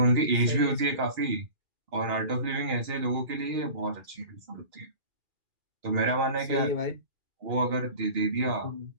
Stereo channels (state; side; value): late; left; 2.4 ms